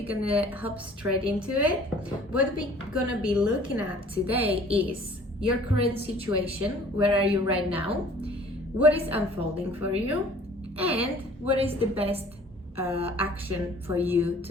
gonna hop straight into it. What we're gonna be looking at today is your current situation. Where are you right now? What is unfolding for you? And what is the best action for you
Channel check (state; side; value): normal; both; correlation 0.52